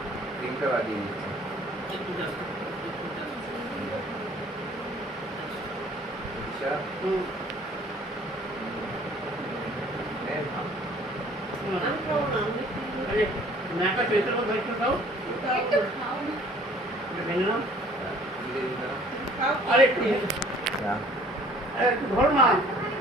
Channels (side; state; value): both; normal; correlation 0.54